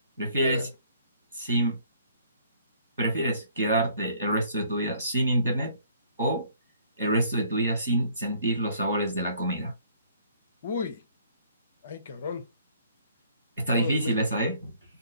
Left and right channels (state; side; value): inverted; both; correlation -0.59